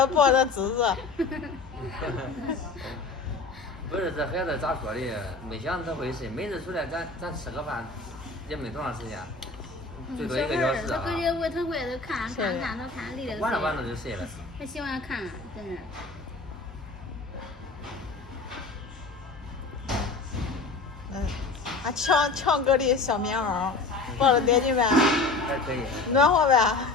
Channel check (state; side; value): quieter; right; 3.9 dB